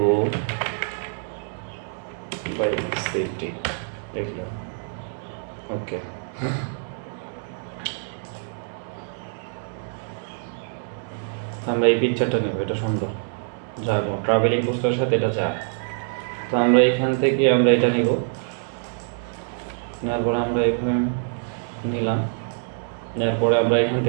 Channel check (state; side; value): silent; left; digital silence